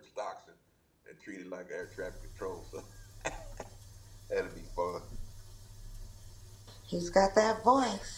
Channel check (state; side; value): identical; both; correlation 1.00